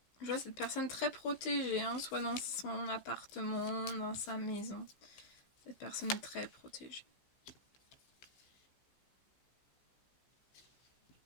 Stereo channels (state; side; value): late; right; 15 ms